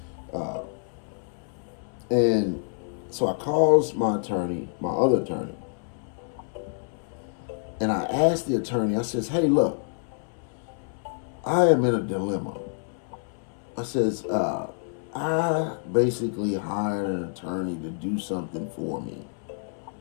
And so I calls my other attorney, and I asked the attorney. I says, "Hey, look, I am in a dilemma." I says, I basically hired an attorney to do something for me,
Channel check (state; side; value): silent; right; 60 dB below the other